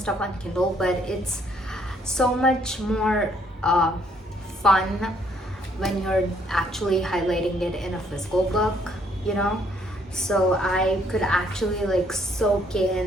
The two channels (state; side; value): normal; both; correlation 0.67